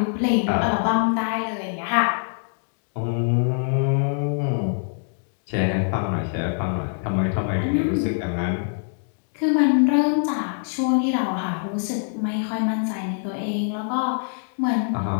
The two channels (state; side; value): silent; right; digital silence